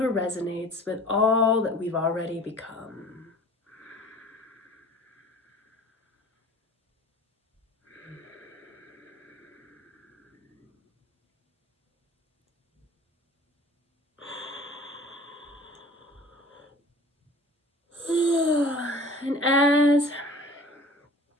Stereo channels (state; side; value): normal; both; correlation 0.45